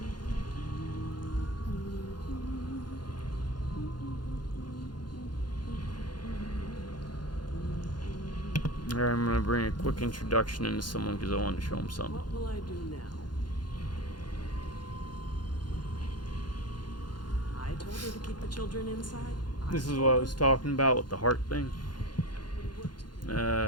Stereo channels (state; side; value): late; right; 0.71 ms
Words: Alright, I'm gonna bring a quick introduction into someone because I wanted to show him something. What will I do now? I told her to keep the children inside. This is what I was talking about with the heart thing.